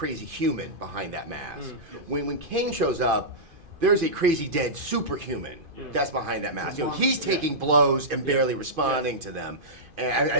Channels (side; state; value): left; late; 2.5 ms